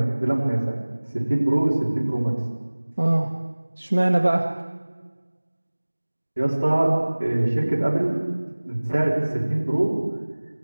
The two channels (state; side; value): inverted; both; correlation -1.00